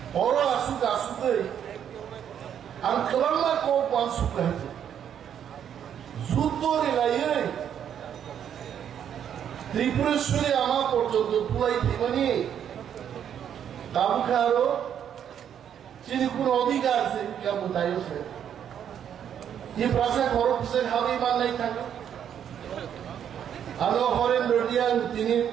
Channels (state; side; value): quieter; left; 9.1 dB